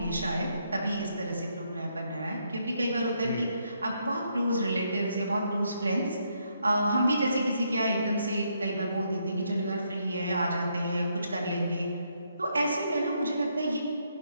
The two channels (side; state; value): both; inverted; correlation -0.75